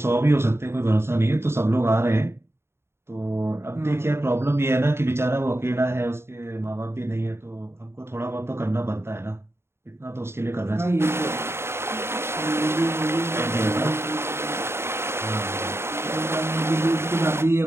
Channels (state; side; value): late; left; 0.12 ms